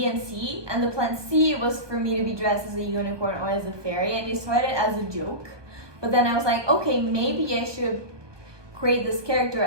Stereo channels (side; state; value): left; late; 1.2 ms